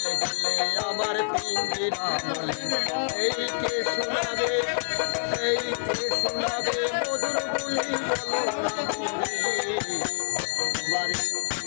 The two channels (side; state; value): right; silent; digital silence